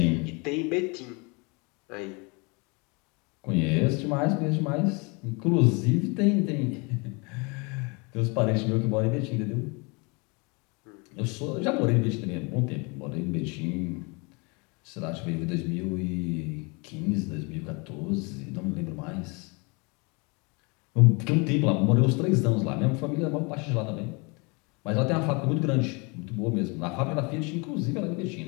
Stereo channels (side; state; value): right; quieter; 30.0 dB